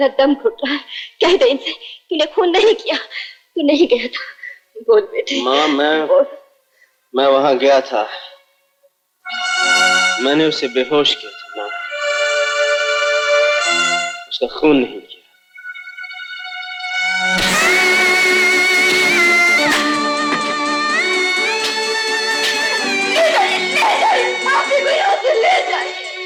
दम घुट रहा है। कह दे इनसे, तूने खून नहीं किया, तू नहीं गया था। बोल बेटे। माँ, मैं वहां गया था। मैंने उसे बेहोश किया था माँ, उसका खून नहीं किया।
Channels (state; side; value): identical; both; correlation 1.00